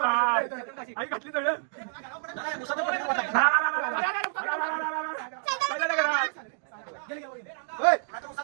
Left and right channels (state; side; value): silent; left; 59 dB below the other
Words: आई घातली सगळं